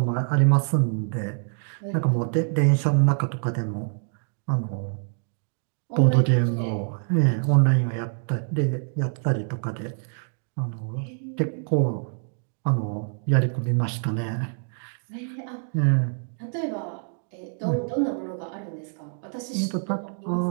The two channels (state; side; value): silent; left; 61 dB below the other